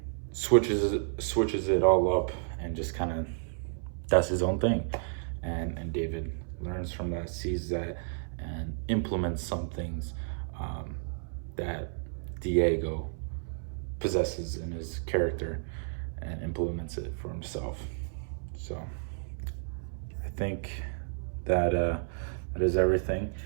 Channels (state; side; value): silent; left; 57 dB below the other